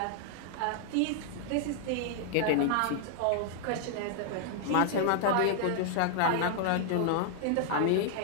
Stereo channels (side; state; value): both; different; correlation 0.00